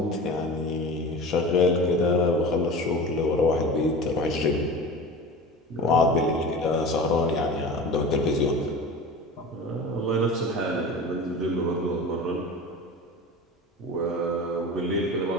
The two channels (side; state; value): both; normal; correlation 0.34